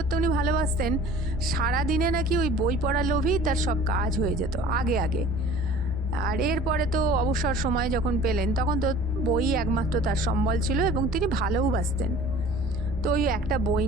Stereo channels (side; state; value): both; normal; correlation 0.46